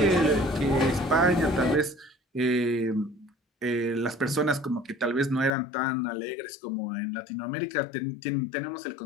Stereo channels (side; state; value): right; drops out; at 5.6 s